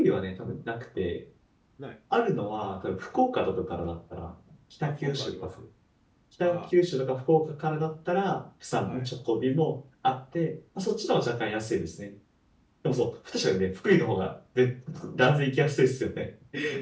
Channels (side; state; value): both; identical; correlation 1.00